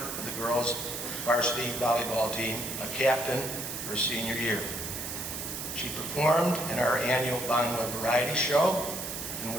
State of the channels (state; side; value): noise; right; hiss, 6 dB below the sound